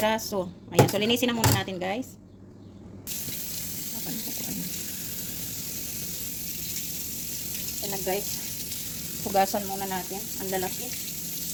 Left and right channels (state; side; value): identical; both; correlation 1.00